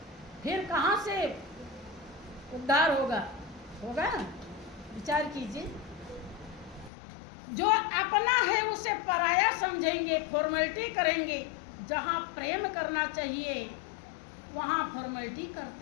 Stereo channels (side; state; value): right; drops out; at 6.9 s